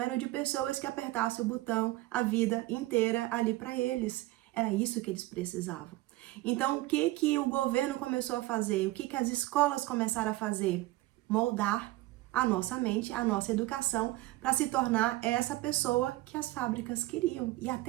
de pessoas que apertassem o botão a vida inteira ali para eles. Era isso que eles precisavam. Então, o que o governo começou a fazer? O que as escolas começaram a fazer? Moldar a nossa mente, a nossa educação, para se tornar essa pessoa que as fábricas queriam. E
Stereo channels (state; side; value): quieter; left; 18.3 dB